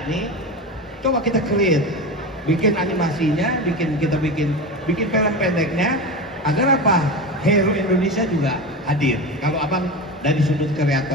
nih, coba kita create, bikin animasinya, bikin film pendeknya, agar apa? Hero Indonesia juga hadir. Kalau abang dari sudut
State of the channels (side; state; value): both; normal; correlation 0.24